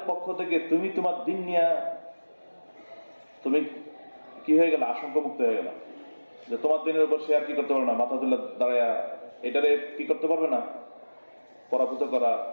পক্ষ থেকে তুমি তোমার দিন নিয়ে তুমি কি হয়ে গেল? আশঙ্কামুক্ত হয়ে গেল যে তোমার দিনের উপর সে আর কি করতে পারবে না, মাথা তুলে দাঁড়ায়া এটারে কি করতে পারবে না, পরাভূত করা,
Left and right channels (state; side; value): inverted; both; correlation -1.00